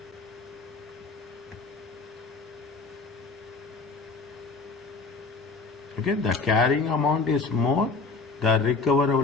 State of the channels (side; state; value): right; quieter; 4.1 dB